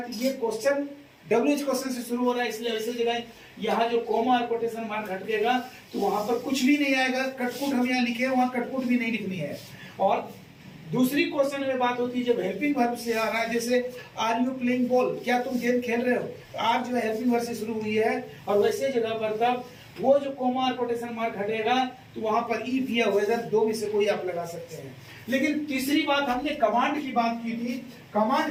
तो ये क्वेश्चन WH क्वेश्चन से शुरू हो रहा है, इसलिए वैसे जगह यहाँ जो कोमा और कोटेशन मार्क हटेगा तो वहां पर कुछ भी नहीं आएगा। कटकुट हम यहाँ लिखे, वहां कटकुट भी नहीं लिखनी है। और दूसरी क्वेश्चन में बात होती है जब हेल्पिंग वर्ब से आ रहा है, जैसे आर यू प्लेइंग बॉल, क्या तुम गेम खेल रहे हो, आर जो है हेल्पिंग वर्ब से शुरू हुई है, और वैसे जगह पर तब वो जो कोमा और कोटेशन मार्क हटेगा तो वहां पर इफ या वेदर दो में से कोई आप लगा सकते हैं। लेकिन तीसरी बात, हमने कमांड की बात की थी।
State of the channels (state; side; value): identical; both; correlation 1.00